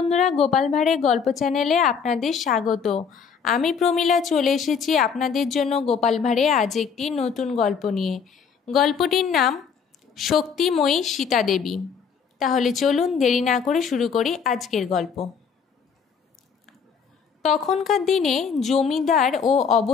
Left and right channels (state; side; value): quieter; right; 6.4 dB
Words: গোপাল ভাঁড়ের গল্প চ্যানেলে আপনাদের স্বাগত। আমি প্রমীলা চলে এসেছি আপনাদের জন্য গোপাল ভাঁড়ে আজ একটি নতুন গল্প নিয়ে। গল্পটির নাম শক্তিময়ী সীতা দেবী। তাহলে চলুন দেরি না করে শুরু করি আজকের গল্প। তখনকার দিনে জমিদার ও